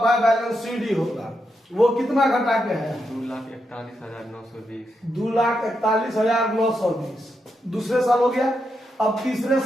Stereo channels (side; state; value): both; normal; correlation 0.84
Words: बैलेंस सीडी होगा। वो कितना घटा के है, 2,41,920। 2,41,920 दूसरे साल हो गया। अब तीसरे